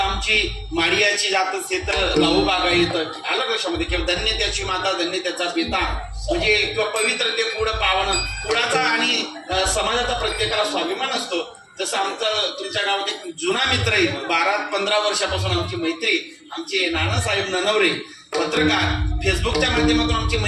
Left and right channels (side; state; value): both; identical; correlation 1.00